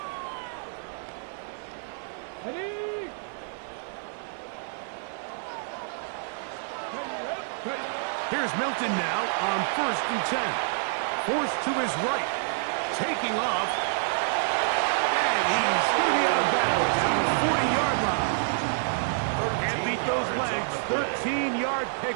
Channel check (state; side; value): silent; left; digital silence